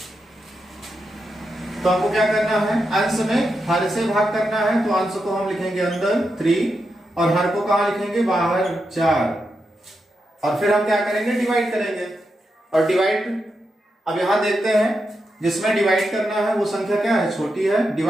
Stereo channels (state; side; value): normal; both; correlation 0.86